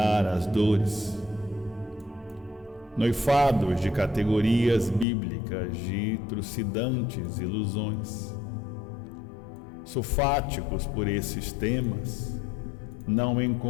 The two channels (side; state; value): right; drops out; at 5.1 s